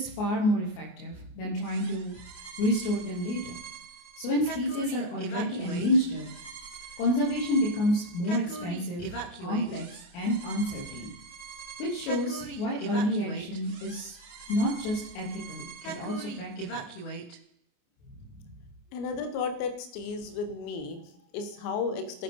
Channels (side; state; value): right; late; 29 ms